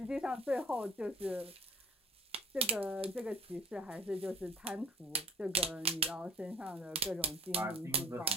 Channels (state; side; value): normal; both; correlation 0.51